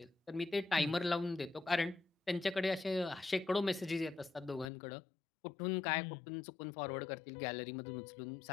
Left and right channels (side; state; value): right; drops out; at 4.7 s